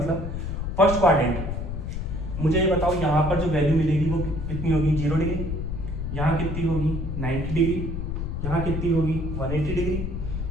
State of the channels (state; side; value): noise; left; rumble, 4 dB below the sound